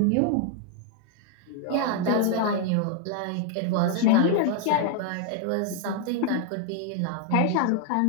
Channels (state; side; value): different; both; correlation 0.00